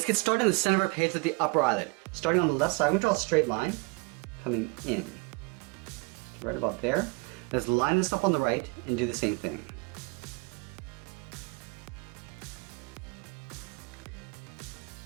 get started in the center of our page with the upper eyelid. Starting on the left side, we're going to draw a straight line coming in. Right about there. Let's line this up on the right and do the same thing.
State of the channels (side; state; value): left; quieter; 30.0 dB